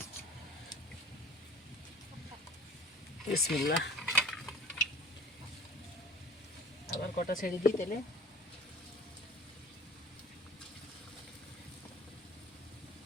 বিসমিল্লাহ। আবার কটা ছেড়ে দিই তেলে।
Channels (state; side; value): normal; both; correlation 0.45